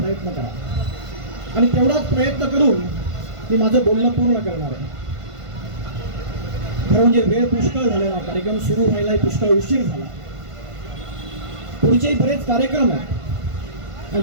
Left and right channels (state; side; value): late; left; 1.5 ms